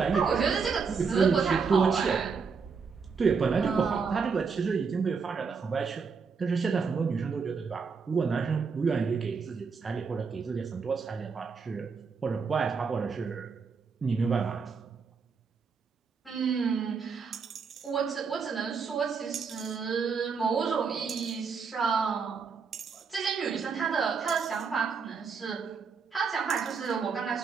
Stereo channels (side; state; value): left; quieter; 5.4 dB